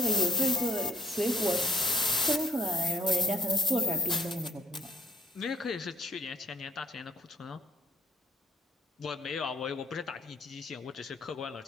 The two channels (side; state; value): both; normal; correlation 0.59